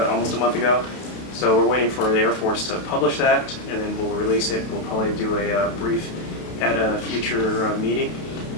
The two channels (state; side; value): late; right; 32 ms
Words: almost a month ago. So we're waiting for the Air Force to publish that, and then we'll release it. We'll probably do a brief at a future meeting,